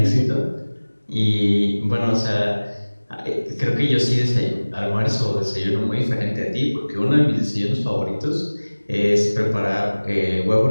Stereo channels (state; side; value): inverted; both; correlation -1.00